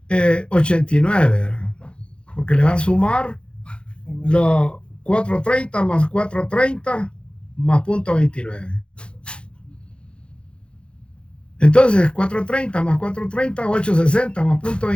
¿verdad? Porque le va a sumar los 4.30 más 4.30 más 0.29. Entonces, 4.30 más 4.30, 8.60 más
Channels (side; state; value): right; late; 0.056 ms